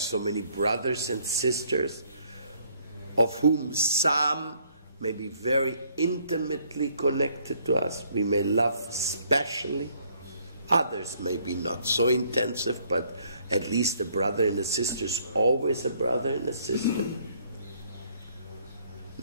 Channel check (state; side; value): inverted; both; correlation -0.65